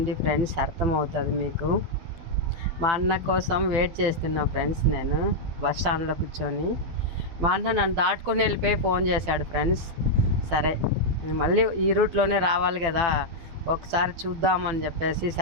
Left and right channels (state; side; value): late; left; 12 ms